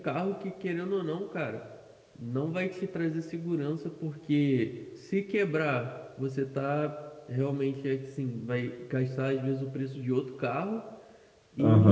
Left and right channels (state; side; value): identical; both; correlation 1.00